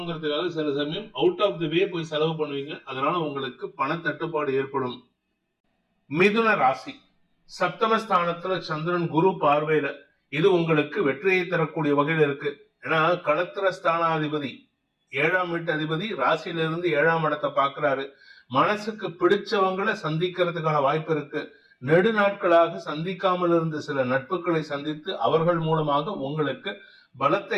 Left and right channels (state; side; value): identical; both; correlation 1.00